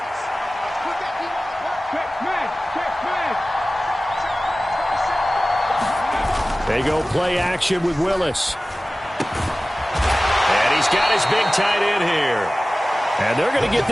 They go play action with Willis. And He's got his big tight end here. And they're going to get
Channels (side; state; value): both; normal; correlation 0.97